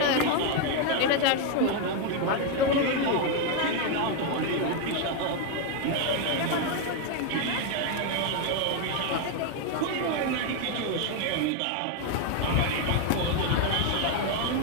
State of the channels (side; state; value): both; different; correlation 0.01